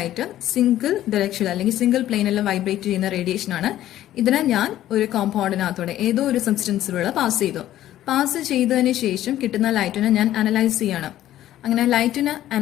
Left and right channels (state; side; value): quieter; right; 13.1 dB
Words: single direction അല്ലെങ്കിൽ സിംഗിൾ പ്ലെയിനിൽ വൈബ്രേറ്റ് ചെയ്യുന്ന റേഡിയേഷൻ ആണ്. ഇതിനെ ഞാൻ ഒരു കോമ്പൗണ്ടിനകത്തോടെ ഏതോ ഒരു സബ്സ്റ്റൻസിലൂടെ പാസ് ചെയ്തു. പാസ് ചെയ്തതിന് ശേഷം കിട്ടുന്ന ലൈറ്റിനെ ഞാൻ അനലൈസ് ചെയ്യണം. അങ്ങനെ ലൈറ്റിനെ